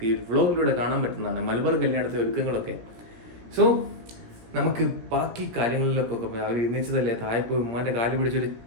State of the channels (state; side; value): late; left; 17 ms